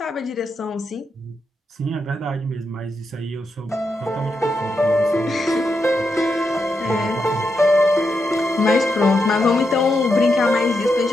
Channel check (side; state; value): both; normal; correlation 0.84